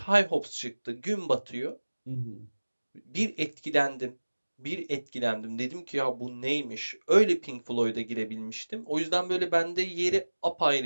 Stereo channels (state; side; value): inverted; both; correlation -1.00